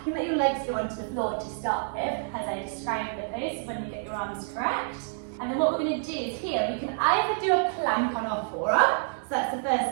You can let your legs go onto the floor to start with, as I described the pose, when you get your arms correct. And then what we're going to do is here, we can either do a plank on our forearm, so that's the first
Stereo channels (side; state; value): left; silent; digital silence